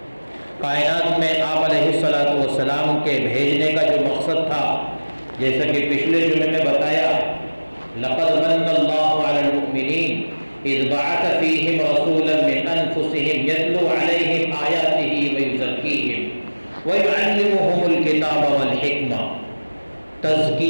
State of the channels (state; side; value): inverted; both; correlation -1.00